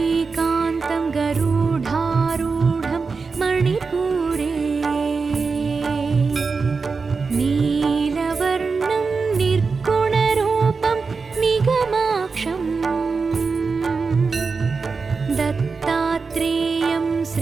गरुडारूढं मणिपुरे नीलवर्णं निर्गुणरूपं निगमाक्षं दत्तात्रेयं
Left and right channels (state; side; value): quieter; left; 4.7 dB